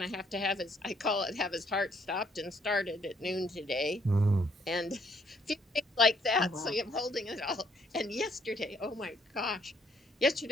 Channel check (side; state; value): both; normal; correlation 0.67